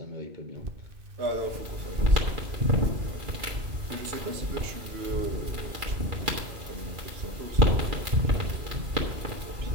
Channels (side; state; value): left; late; 2.4 ms